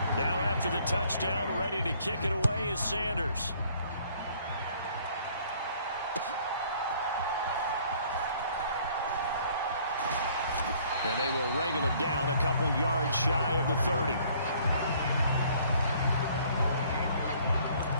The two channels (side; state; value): both; inverted; correlation -0.59